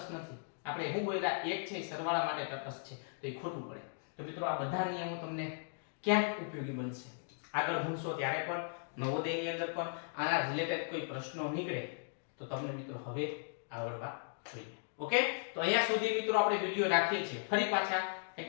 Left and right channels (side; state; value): right; silent; digital silence